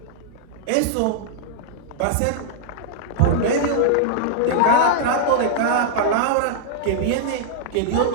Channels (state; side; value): different; both; correlation -0.01